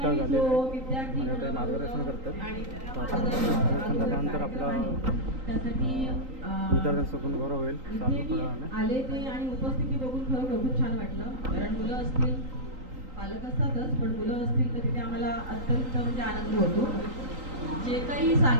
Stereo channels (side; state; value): left; late; 3.8 ms